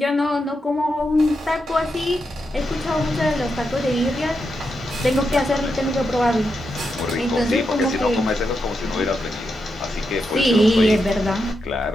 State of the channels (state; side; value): normal; both; correlation 0.85